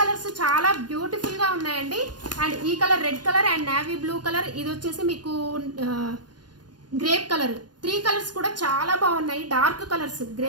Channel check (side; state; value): left; late; 0.70 ms